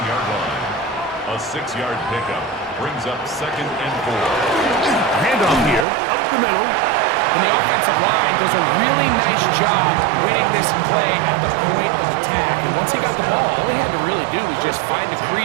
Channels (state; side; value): drops out; left; at 5.9 s